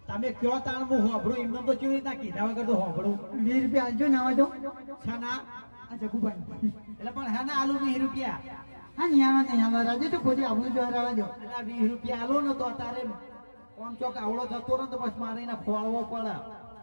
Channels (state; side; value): inverted; both; correlation -1.00